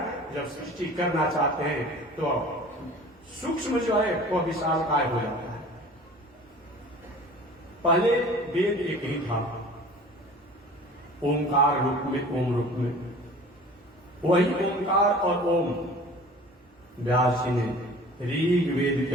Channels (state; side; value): normal; both; correlation 0.44